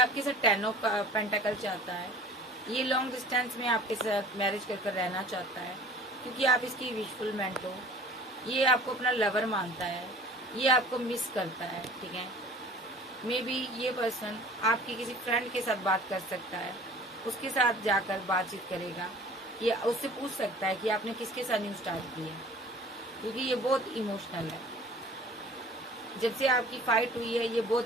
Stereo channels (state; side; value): normal; both; correlation 0.47